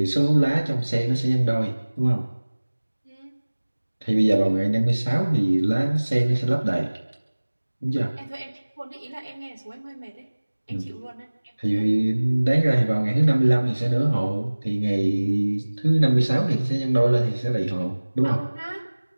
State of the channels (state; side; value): inverted; both; correlation -1.00